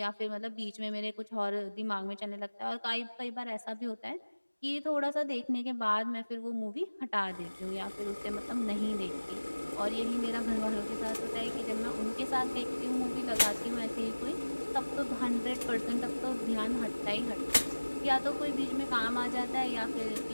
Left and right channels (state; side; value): inverted; both; correlation -1.00